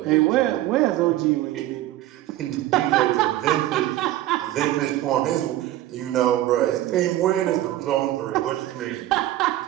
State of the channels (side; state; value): left; quieter; 14.7 dB